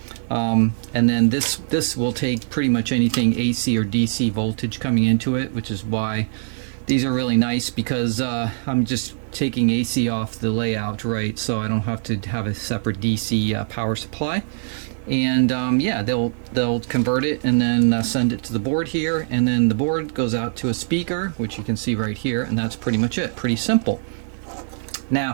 and then this will take pretty much anything AC or DC voltage coming into it, which is why these are really nice, because I'm just taking AC off the layout, right? So I don't have to have a separate DC power supply. And yeah, they'll convert it and then send it to the board here, and then the board goes out to a speaker, which you can see right here, and that's pretty much it. Pretty simple.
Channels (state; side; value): silent; left; 63 dB below the other